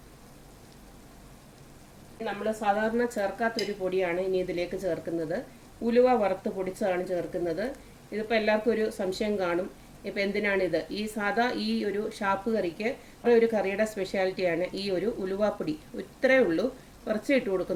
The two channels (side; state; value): both; identical; correlation 1.00